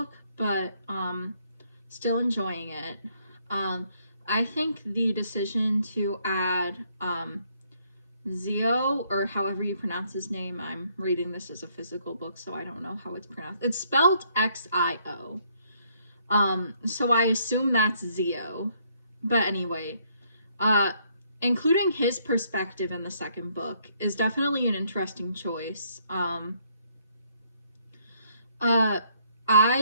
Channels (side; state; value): both; inverted; correlation -0.69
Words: but still enjoying it. I think the decision to add Zio, or however you pronounce his name, I'm reading this as a physical book, so I don't know how it's pronounced. It's spelled Xio. So I assume that's Zio. But anyway, including his perspective in the second book is definitely an interesting choice.